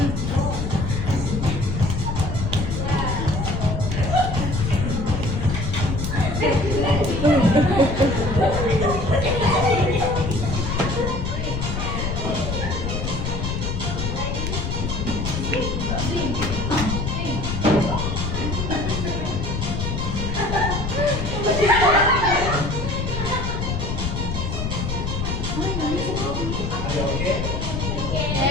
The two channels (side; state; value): left; noise; rumble, 2 dB below the sound